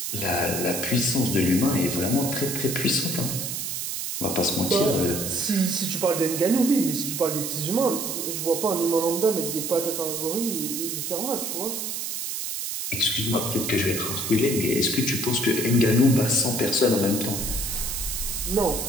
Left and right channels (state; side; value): noise; right; hiss, 3 dB below the sound